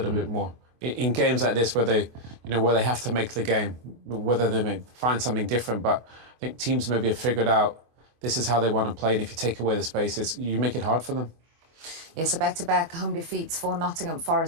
bit more in games like this where they have to make the game, whether they may find something different. But I think teams maybe have figured out this is how they want to play, and if you take away the spaces, you make it hard for them. Yeah, so back-to-back home defeats for Nottingham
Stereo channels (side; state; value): left; late; 24 ms